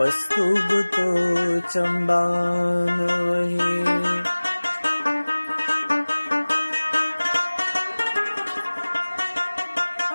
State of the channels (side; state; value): both; inverted; correlation -1.00